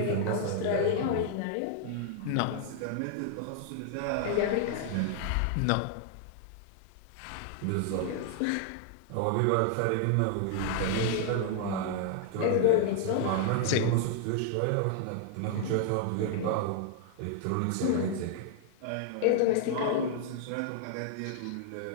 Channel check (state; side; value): different; both; correlation -0.01